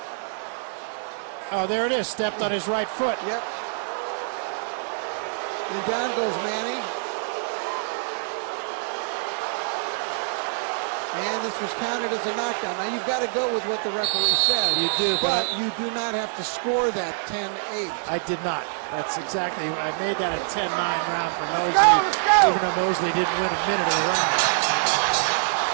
Oh, there it is. Stepped on his right foot. Yep. And down goes Manny. And this was counted as a knockdown. Now you've got to go with what the referee said. You do, but you do not have to score that 10-8. I did not. That's exactly. I made that a 10-9 round for Mosley, let's go. even though Mosley didn't win a minute of the round.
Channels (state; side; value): silent; left; digital silence